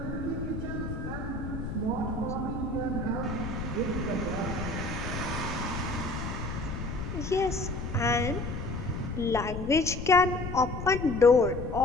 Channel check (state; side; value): noise; left; rumble, 6 dB below the sound